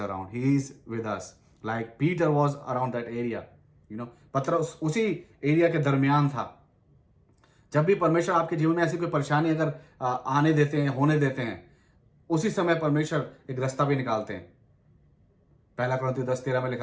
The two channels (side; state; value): both; identical; correlation 1.00